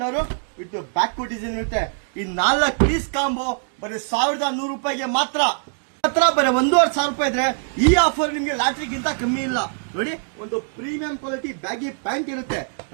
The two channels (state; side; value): silent; left; digital silence